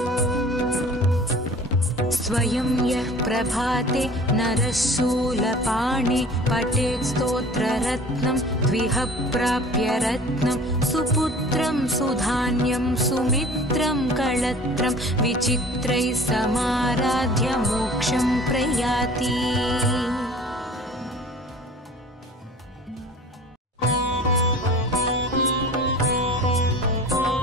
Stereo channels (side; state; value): both; normal; correlation 0.45